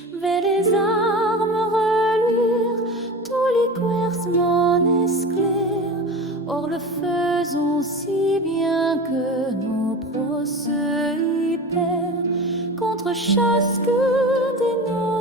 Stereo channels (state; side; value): normal; both; correlation 0.31